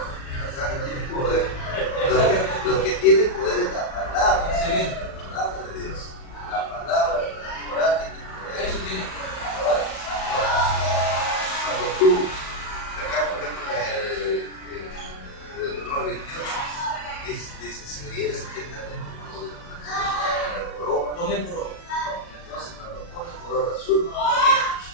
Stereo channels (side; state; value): right; late; 37 ms